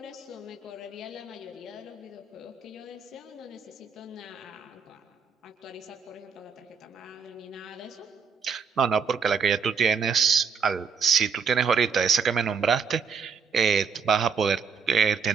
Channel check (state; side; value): quieter; left; 5.9 dB